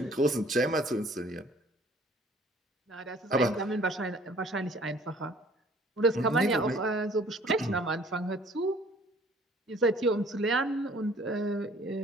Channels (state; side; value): normal; both; correlation 0.54